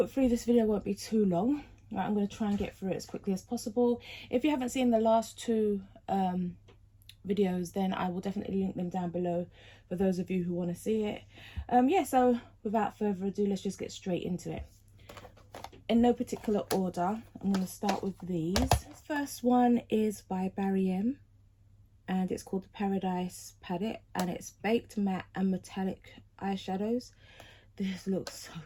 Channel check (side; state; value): both; identical; correlation 1.00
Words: this video won't be too long. Right, I'm going to try and get through it as quickly as possible. If you haven't seen the last two videos, then I will definitely link them down below for those of you who want to see it. Yeah, so without further ado, let's just get straight into it. In no particular order, I'm going to start with these. This first one is by Barry M, and it's called the Paradise Palette, and it's baked matte and metallic eyeshadows. This looks so